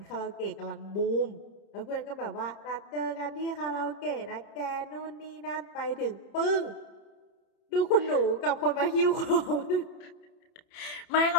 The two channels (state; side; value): late; right; 30 ms